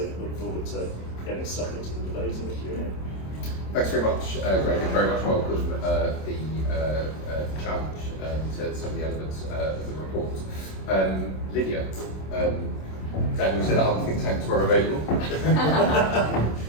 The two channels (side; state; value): right; late; 26 ms